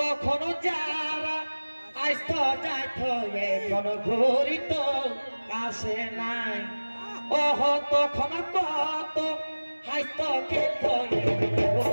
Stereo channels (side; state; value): both; inverted; correlation -1.00